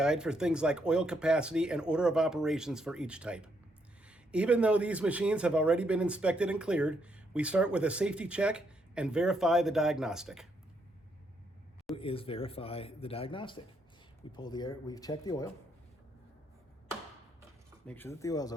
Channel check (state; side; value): normal; both; correlation 0.75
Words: for things like oil capacity and order of operations for each type. Even though these machines have already been inspected and cleared, we start with a safety check and verify the diagnostic. Is verify the diagnostic. We pull the air, we check the oil, make sure that the oil's